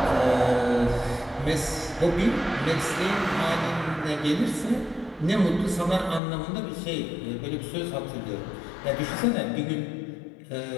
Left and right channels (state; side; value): drops out; right; at 6.2 s